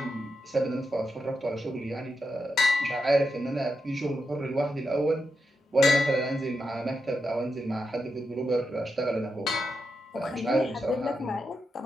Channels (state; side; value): normal; both; correlation 0.86